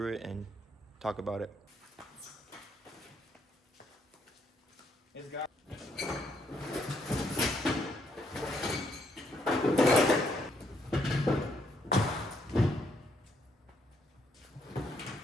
it and talk about it. It's got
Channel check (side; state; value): both; normal; correlation 0.73